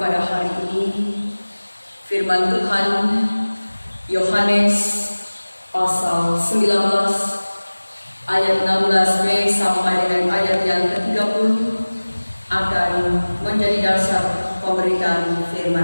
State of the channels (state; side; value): inverted; both; correlation -1.00